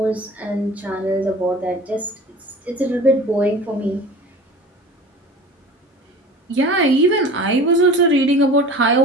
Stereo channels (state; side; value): normal; both; correlation 0.40